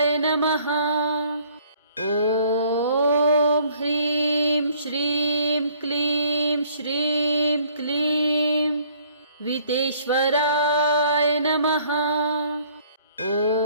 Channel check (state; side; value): inverted; both; correlation -0.59